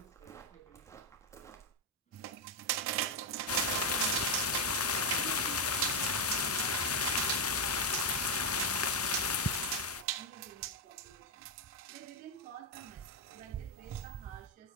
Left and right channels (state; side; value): normal; both; correlation 0.03